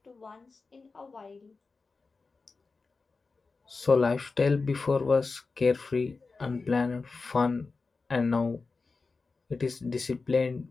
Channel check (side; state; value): right; quieter; 4.1 dB